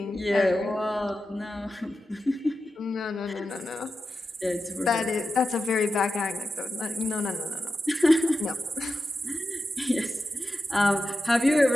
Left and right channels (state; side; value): normal; both; correlation 0.91